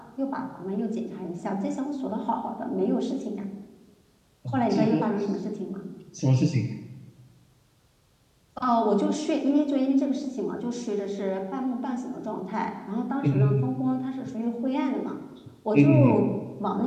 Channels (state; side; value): identical; both; correlation 1.00